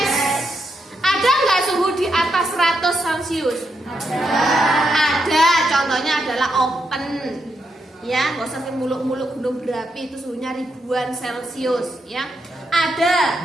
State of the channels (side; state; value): both; normal; correlation 0.82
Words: Ada nggak suhu di atas 100 Celcius? Ada. Contohnya adalah open. Ya, nggak usah muluk-muluk gunung berapi, itu suhunya ribuan Celcius. Ya,